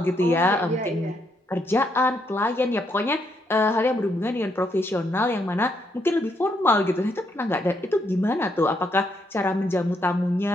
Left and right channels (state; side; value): normal; both; correlation 0.76